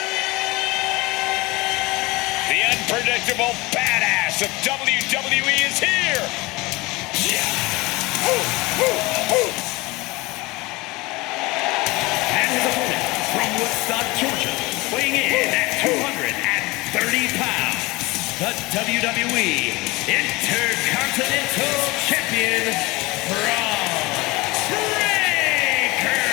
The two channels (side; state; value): right; quieter; 22.7 dB